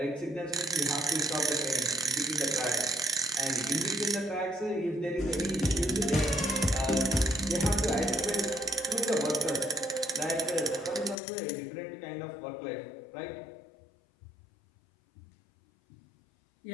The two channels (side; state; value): right; drops out; at 11.2 s